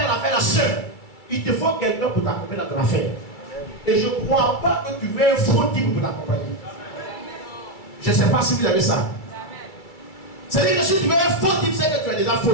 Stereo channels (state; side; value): late; right; 2.3 ms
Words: l'affaire seul. Il te faut quelqu'un pour t'accompagner dans ton affaire. Et je ne crois pas que tu veux un faux type pour t'accompagner. Je ne sais pas si vous avez ça. C'est-à-dire que si tu veux un faux type, c'est que tu es déjà faux